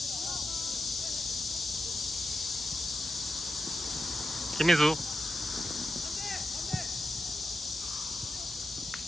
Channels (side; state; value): both; normal; correlation 0.88